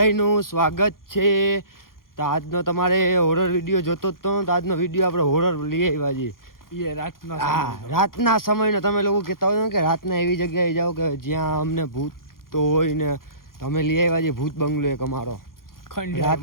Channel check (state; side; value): late; right; 0.92 ms